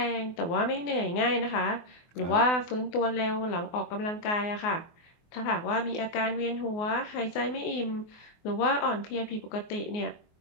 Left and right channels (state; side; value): late; right; 24 ms